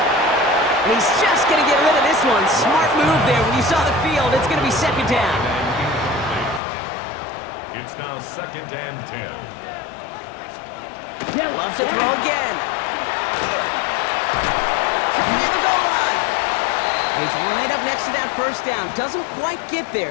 And he's just going to get rid of this one. Smart move there. When you saw the field, it's going to be 2nd down. It's now 2nd and 10. Loves to throw again. Coming near the goal line. And he's right up next to that 1st down. Doesn't quite get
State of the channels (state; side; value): drops out; right; at 6.6 s